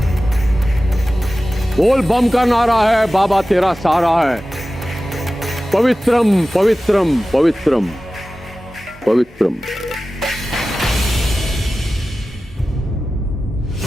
बोल बम का नारा है, बाबा तेरा सहारा है। पवित्रम पवित्रम पवित्रम पवित्रम।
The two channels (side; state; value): both; normal; correlation 0.95